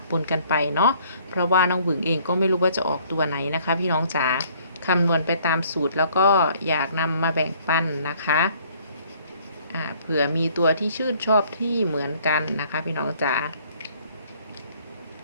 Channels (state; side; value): inverted; both; correlation -0.60